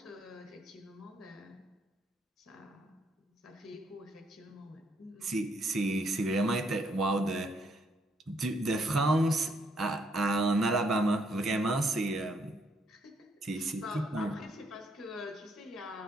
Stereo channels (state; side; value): normal; both; correlation 0.72